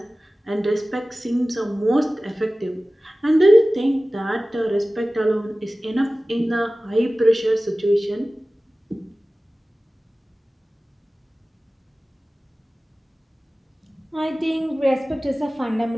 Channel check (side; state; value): both; normal; correlation 0.97